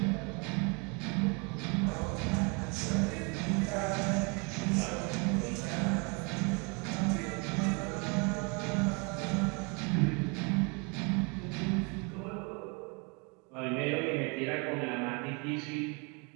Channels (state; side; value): quieter; left; 32.2 dB